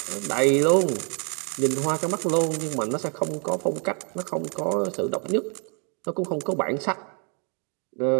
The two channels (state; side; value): quieter; left; 38.5 dB